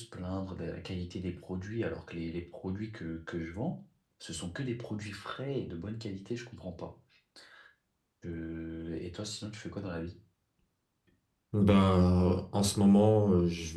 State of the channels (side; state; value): both; identical; correlation 1.00